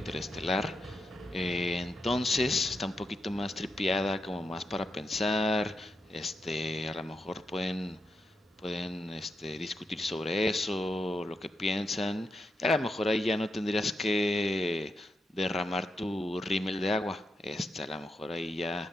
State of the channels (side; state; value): both; normal; correlation 0.85